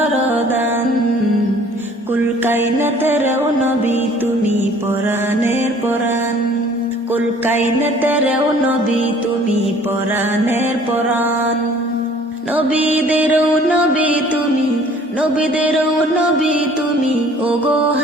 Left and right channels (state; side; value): normal; both; correlation 0.53